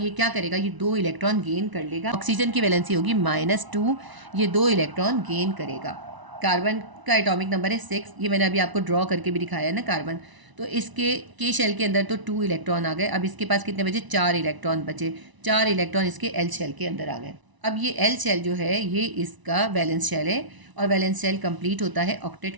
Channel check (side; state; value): left; late; 1.0 ms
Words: क्या करेगा, ये 2 इलेक्ट्रॉन गेन कर लेगा। ऑक्सीजन की वैलेंसी होगी -2, ये 2 इलेक्ट्रॉन गेन करेगा। कार्बन का एटॉमिक नंबर है 6, ये मैंने अभी आपको ड्रॉ करके भी दिखाया है ना कार्बन। तो इसके के शेल के अंदर तो 2 इलेक्ट्रॉन आ गए, अब इसके पास कितने बचे, 4 इलेक्ट्रॉन बचे। 4 इलेक्ट्रॉन इसके एल शेल के अंदर आ गए। अब ये एल शेल जो है ये इसका वैलेंस शेल है, और वैलेंस शेल कंप्लीट होता है ऑक्टेट